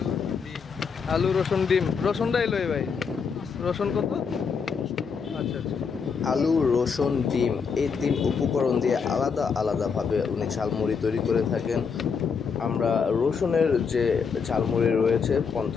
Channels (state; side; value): quieter; right; 5.9 dB